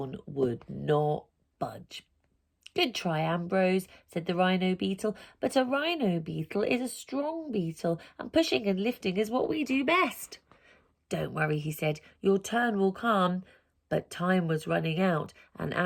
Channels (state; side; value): identical; both; correlation 1.00